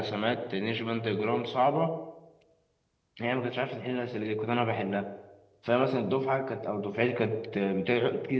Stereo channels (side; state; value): both; identical; correlation 1.00